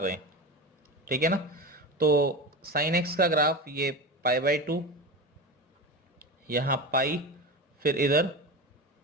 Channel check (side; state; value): both; normal; correlation 0.25